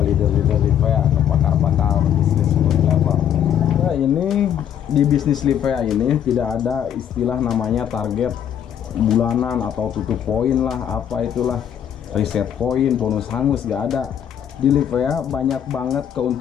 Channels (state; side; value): quieter; right; 9.5 dB